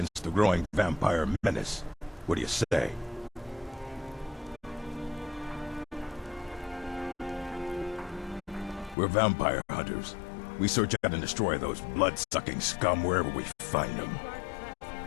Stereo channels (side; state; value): right; drops out; at 9.0 s